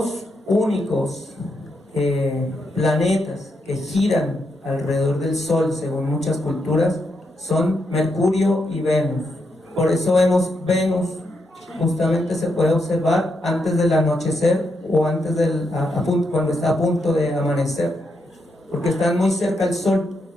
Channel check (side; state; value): both; normal; correlation 0.81